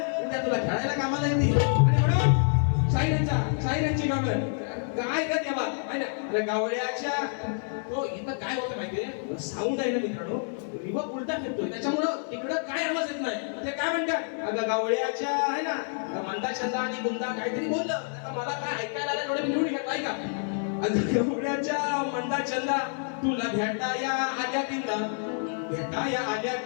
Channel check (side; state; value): right; silent; 59 dB below the other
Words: उद्या तुला खेळायला कामाला येते. आणि म्हणून शाहिरांची कामं काय का तेव्हा आहे ना. अरे गावड्याच्या तो इथं काय होतं माहितीये, साऊंड आहे ना मित्रांनो, रिवर्ब उलटा फिरतोय, त्याच्यामुळं तिकडं काय आवाज येत नाही. ते काय म्हणतात, अगं गावड्याच्या आहे ना मंदा छंदा आणि गुंदा काहीतरी बोललं, आता मला काय ऐकायला आलं थोडं निवडून घेत आहे का. अगं गावड्याच्या मंदा छंदा तुला भेटाया आल्या तिंदा, भेटाया आल्या